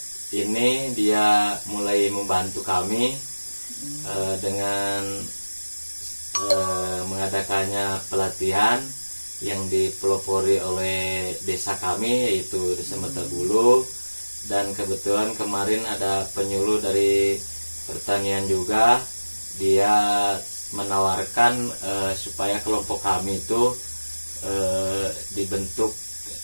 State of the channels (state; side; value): inverted; both; correlation -1.00